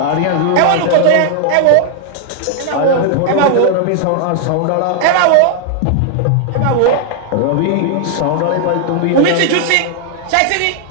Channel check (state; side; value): different; both; correlation 0.00